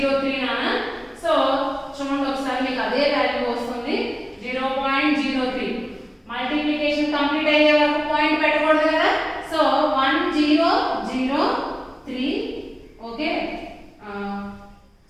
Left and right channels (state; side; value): identical; both; correlation 1.00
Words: నానా. సో చూడండి ఒకసారి మీకు అదే వాల్యూ వస్తుంది, 0.03. మల్టిప్లికేషన్ కంప్లీట్ అయ్యే వరకు పాయింట్ పెట్టకూడదు కదా. సో 1003. ఓకే,